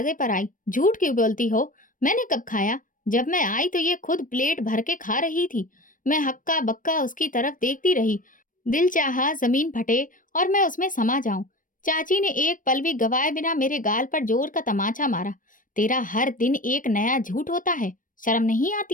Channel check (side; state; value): right; late; 0.38 ms